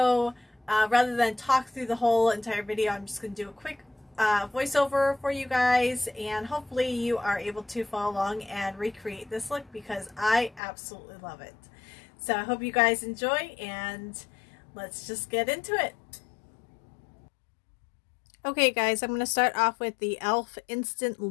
rather than talk through the whole entire video, I'm just going to do a quick voiceover for you guys, and hopefully you are able to follow along and recreate this look because I absolutely love it. So I hope you guys enjoy, and let's just get into it. Okay guys, I'm going to start off with the e.l.f. Instant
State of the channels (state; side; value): drops out; right; at 10.6 s